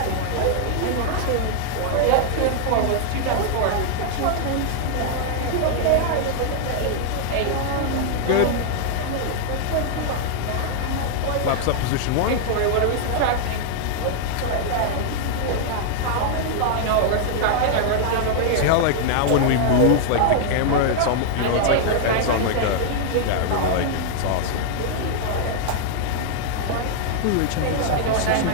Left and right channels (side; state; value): both; different; correlation -0.01